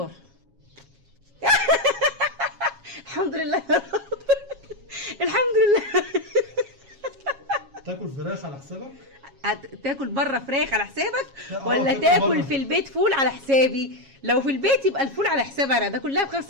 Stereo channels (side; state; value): left; late; 7.3 ms